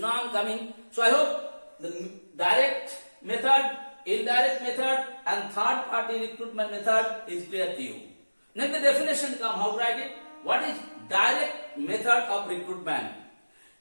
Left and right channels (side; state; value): both; inverted; correlation -1.00